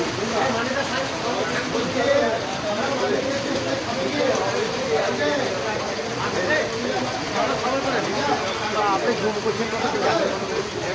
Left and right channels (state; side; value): identical; both; correlation 1.00